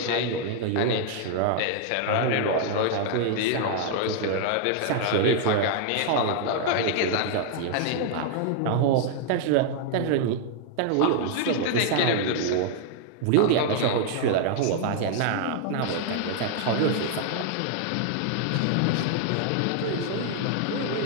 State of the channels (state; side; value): different; both; correlation 0.00